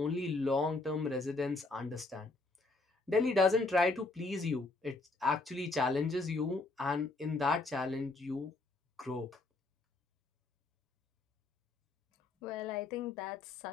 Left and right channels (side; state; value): right; quieter; 3.3 dB